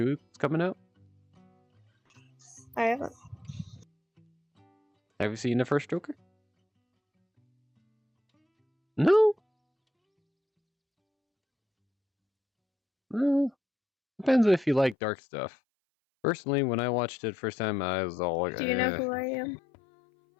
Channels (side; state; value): right; drops out; at 15.0 s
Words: that's coming out? I haven't. Have you seen the first Joker? No? Well, depends if you like dark stuff. Personally, when I watched it first time, I was all like, Do you know who I am?